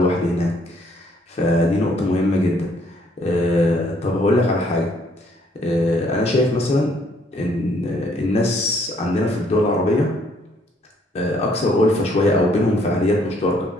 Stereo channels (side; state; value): both; normal; correlation 0.65